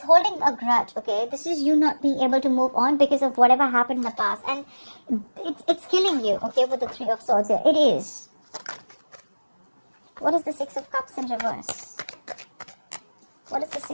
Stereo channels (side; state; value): both; inverted; correlation -1.00